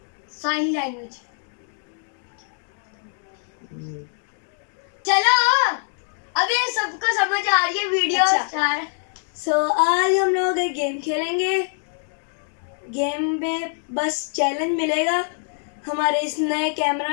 साइन लैंग्वेज। चलो अब ये सबको समझ आ रही है वीडियो स्टार। सो आज हम लोग एक गेम खेलेंगे। गेम में बस चैलेंज मिलेगा हमारे इस नए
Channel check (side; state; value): right; silent; 59 dB below the other